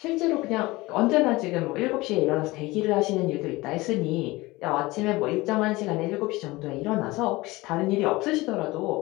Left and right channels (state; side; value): quieter; right; 20.9 dB